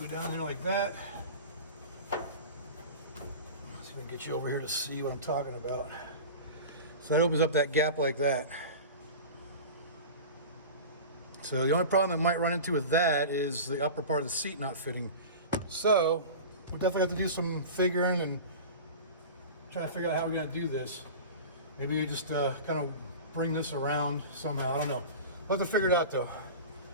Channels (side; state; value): both; inverted; correlation -0.33